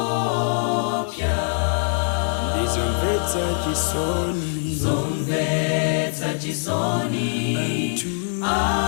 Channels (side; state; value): right; silent; 64 dB below the other